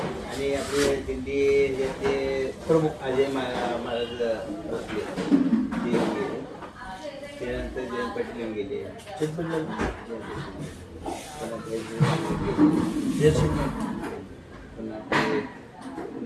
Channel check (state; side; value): identical; both; correlation 1.00